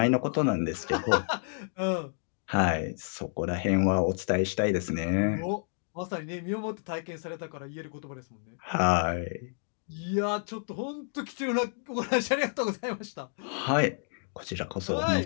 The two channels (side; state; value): right; silent; 58 dB below the other